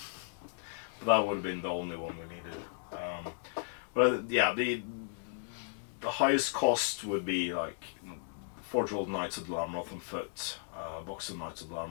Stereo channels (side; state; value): right; silent; digital silence